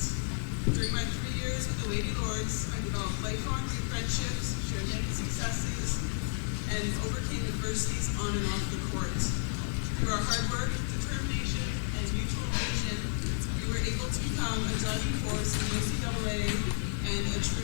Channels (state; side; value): silent; right; digital silence